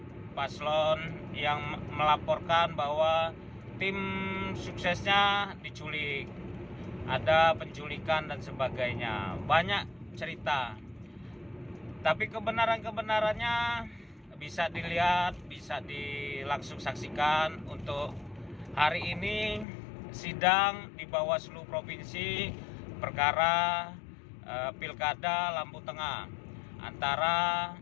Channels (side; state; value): right; drops out; at 19.7 s